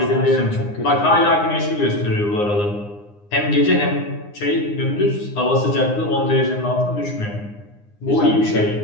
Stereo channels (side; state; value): right; late; 9.7 ms